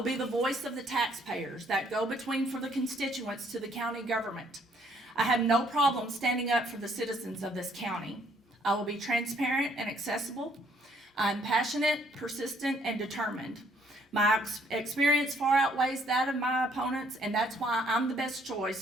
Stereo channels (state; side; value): normal; both; correlation 0.66